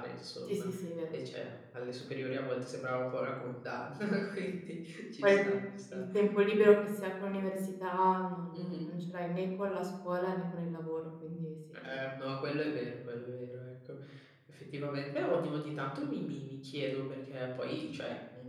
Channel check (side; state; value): both; identical; correlation 1.00